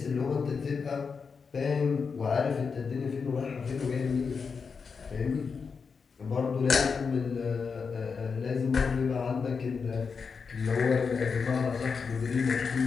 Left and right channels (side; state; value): right; quieter; 5.5 dB